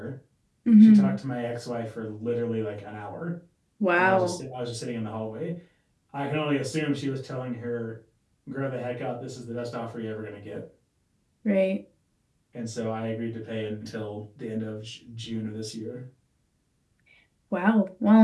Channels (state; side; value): identical; both; correlation 1.00